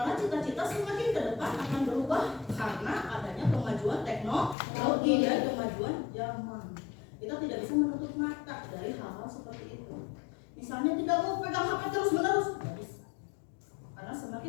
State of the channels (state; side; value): drops out; right; at 4.5 s